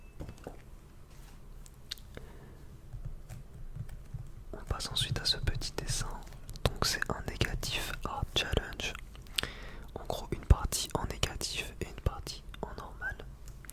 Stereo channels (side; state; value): both; identical; correlation 1.00